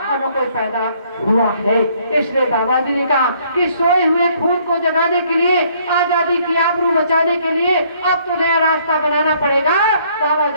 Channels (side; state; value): both; inverted; correlation -0.64